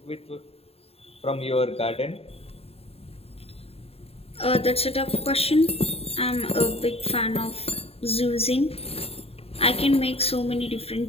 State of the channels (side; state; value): right; late; 0.29 ms